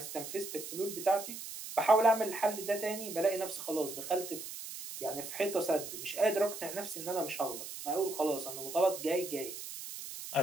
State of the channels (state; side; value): noise; right; hiss, 9 dB below the sound